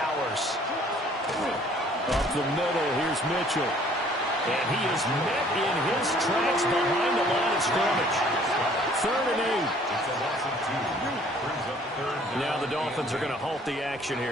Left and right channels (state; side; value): normal; both; correlation 0.57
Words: Up the middle, here's Mitchell. And he is met in his tracks behind the line of scrimmage. 3rd and 8. It's a loss of 2. Brings up 3rd. Now the Dolphins are going to halt the action